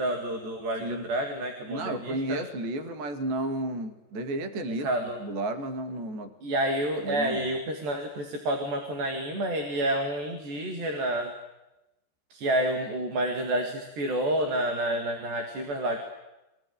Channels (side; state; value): left; late; 14 ms